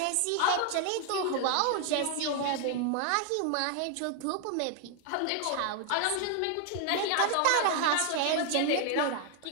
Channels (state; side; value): different; both; correlation 0.00